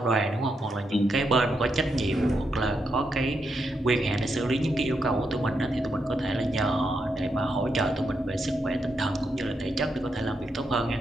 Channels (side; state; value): both; normal; correlation 0.82